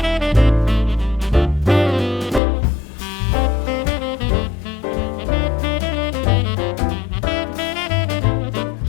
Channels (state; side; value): drops out; right; at 2.4 s